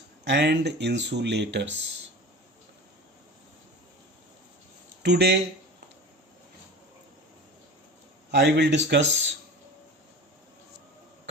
and insulators. Today I will discuss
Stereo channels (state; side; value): normal; both; correlation 0.35